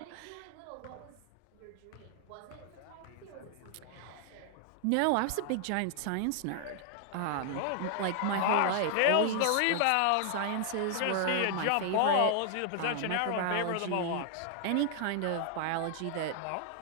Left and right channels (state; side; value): different; both; correlation 0.00